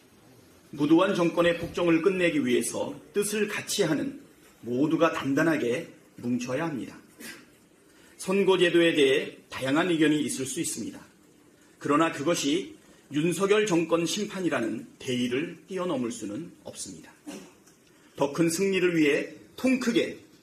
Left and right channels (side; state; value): both; identical; correlation 1.00